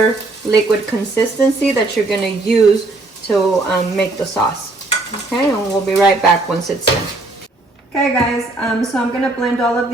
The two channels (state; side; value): quieter; left; 3.0 dB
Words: liquid consistency that you're going to use to make the sauce. Okay, and we'll be right back once it's done. Okay guys, so I'm going to blend all of